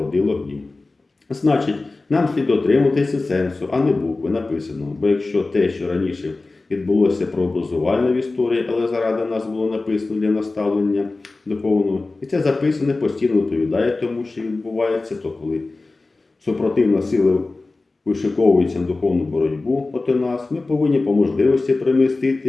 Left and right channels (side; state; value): right; quieter; 3.4 dB